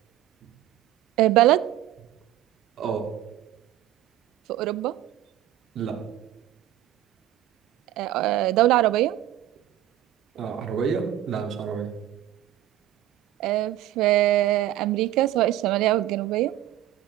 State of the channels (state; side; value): quieter; left; 13.3 dB